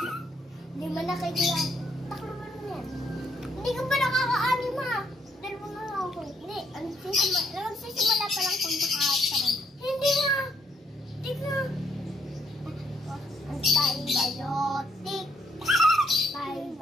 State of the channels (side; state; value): both; normal; correlation 0.71